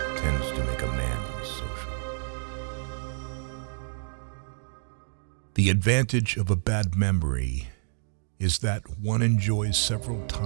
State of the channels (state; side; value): silent; left; digital silence